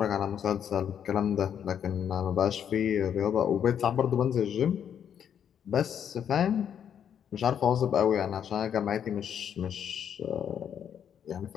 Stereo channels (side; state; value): right; quieter; 8.7 dB